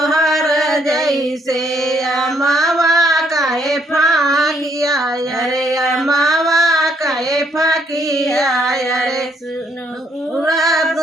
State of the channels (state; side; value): normal; both; correlation 0.70